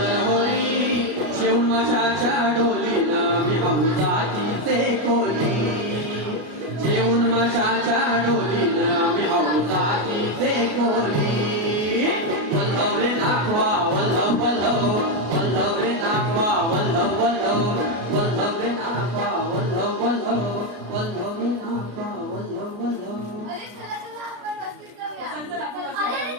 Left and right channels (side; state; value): left; late; 33 ms